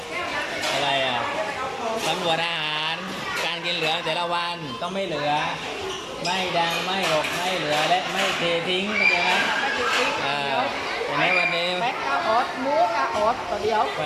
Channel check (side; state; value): both; identical; correlation 1.00